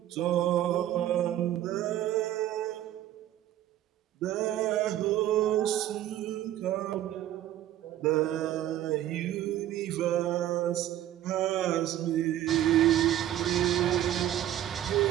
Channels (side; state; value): left; quieter; 12.6 dB